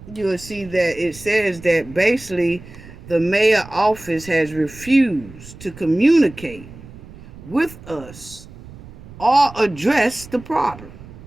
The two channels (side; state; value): right; noise; rumble, 18 dB below the sound